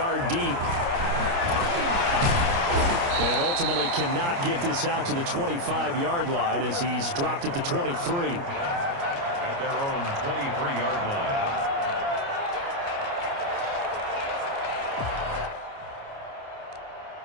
deep. And ultimately cannot get this out to the 25-yard line as he's dropped at the 23. At their own 23-yard line.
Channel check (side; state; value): left; late; 29 ms